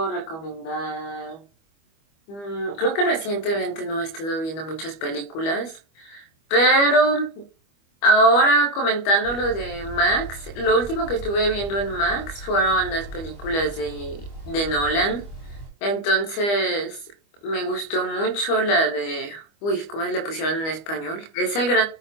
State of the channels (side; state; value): right; late; 25 ms